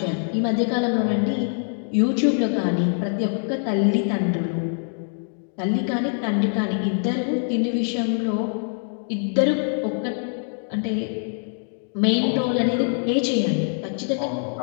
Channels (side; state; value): right; silent; 58 dB below the other